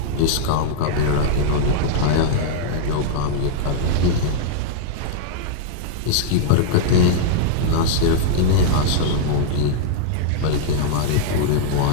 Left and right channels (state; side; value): different; both; correlation -0.01